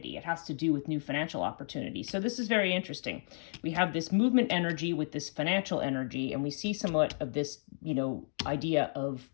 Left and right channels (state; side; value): silent; right; digital silence